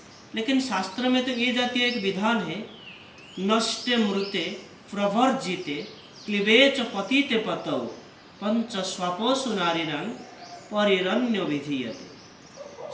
लेकिन शास्त्र में तो ये जातीय एक विधान है, नष्टे मृते प्रवर्जिते क्लिवेच पतिते पतौ पंच स्वपोषु नारीणां परिरण्य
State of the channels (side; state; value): both; identical; correlation 1.00